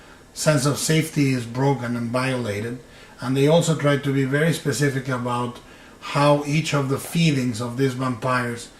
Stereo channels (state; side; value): identical; both; correlation 1.00